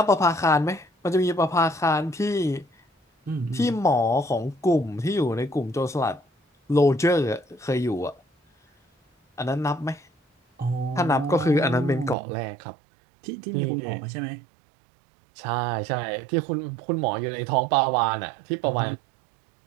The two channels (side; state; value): left; drops out; at 12.2 s